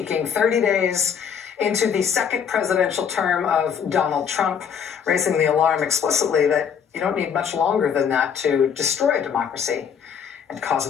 30 days into the second presidential term of Donald Trump, raising the alarm explicitly that you don't need much longer than that to destroy democracy and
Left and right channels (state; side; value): quieter; right; 7.3 dB